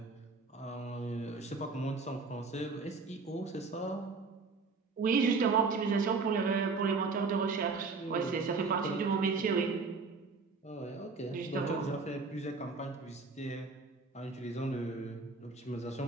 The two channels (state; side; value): quieter; left; 4.3 dB